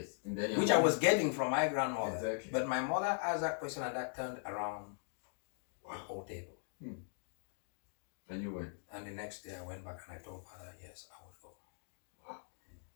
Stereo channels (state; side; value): silent; right; digital silence